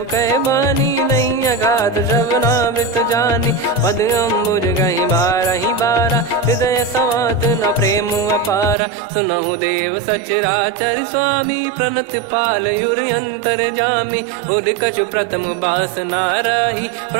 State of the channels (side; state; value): left; drops out; at 8.8 s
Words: कह बानी, नहीं अगाध श्रवणामृत जानी। पद अम्बुज गहि बारहि बारा, हृदय समात न प्रेम अपारा। सुनहु देव सचराचर स्वामी, प्रणत पाल युर अंतर जामी। उर कछु प्रथम बास नाराही,